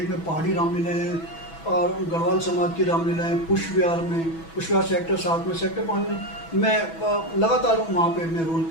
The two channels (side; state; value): right; late; 6.1 ms